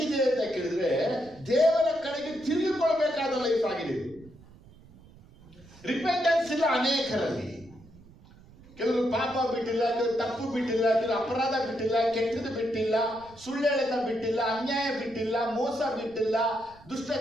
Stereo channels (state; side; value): noise; right; rumble, 23 dB below the sound